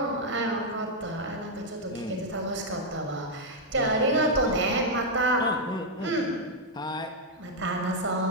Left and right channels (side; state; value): both; normal; correlation -0.03